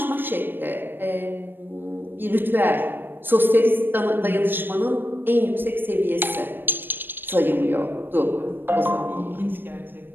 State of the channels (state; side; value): late; left; 0.096 ms